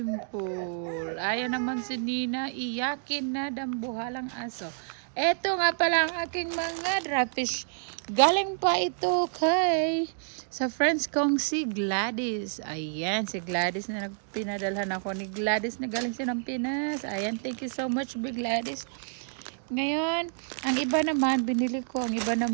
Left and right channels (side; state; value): left; silent; digital silence